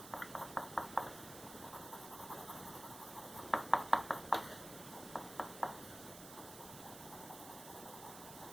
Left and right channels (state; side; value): noise; right; hiss, 12 dB below the sound